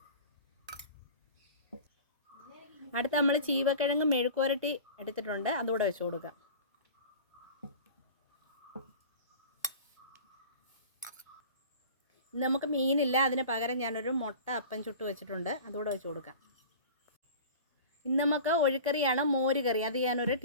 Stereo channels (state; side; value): inverted; both; correlation -0.38